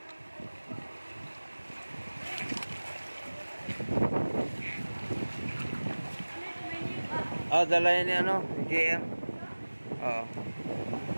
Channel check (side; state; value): both; inverted; correlation -1.00